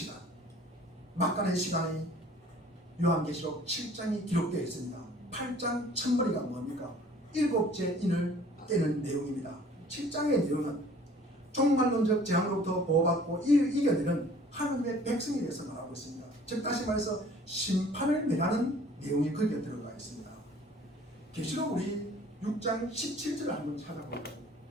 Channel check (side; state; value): both; normal; correlation 0.52